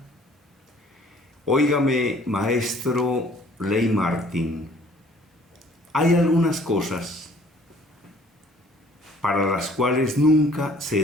Óigame, maestro Ley Martín, hay algunas cosas para las cuales nunca se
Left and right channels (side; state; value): both; normal; correlation 0.56